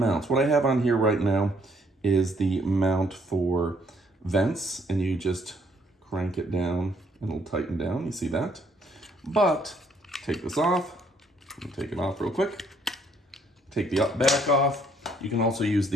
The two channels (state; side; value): normal; both; correlation 0.66